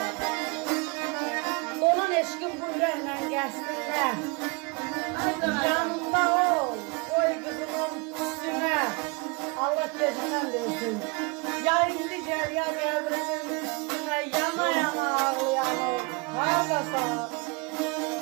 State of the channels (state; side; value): quieter; left; 29.9 dB